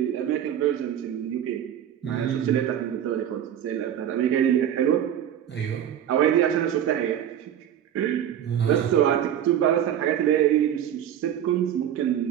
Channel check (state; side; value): quieter; left; 10.1 dB